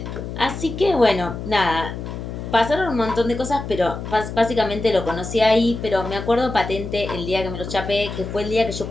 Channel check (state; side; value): noise; left; hum, 8 dB below the sound